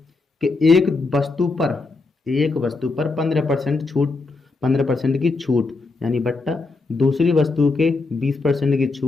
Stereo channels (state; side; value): quieter; right; 3.7 dB